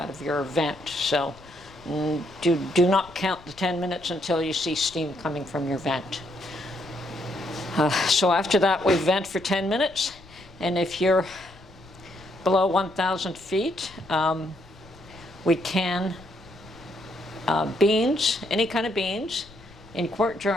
of your vent. So do not count the 10 minutes until you see steam coming from your vent. So after that, we vent for 10 minutes. And if you're below 1,000 feet, we can beans, any kind of beans, in quart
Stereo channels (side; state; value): left; noise; rumble, 23 dB below the sound